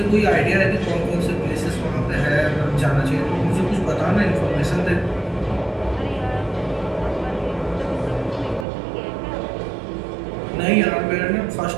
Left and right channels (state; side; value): drops out; left; at 8.7 s